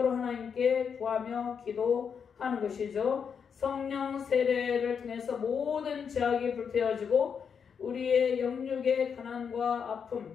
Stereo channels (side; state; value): right; quieter; 6.8 dB